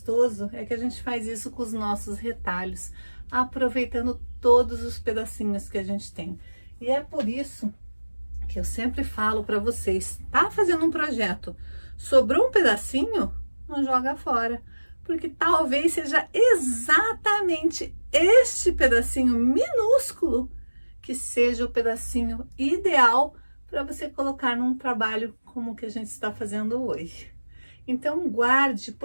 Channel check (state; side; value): inverted; both; correlation -1.00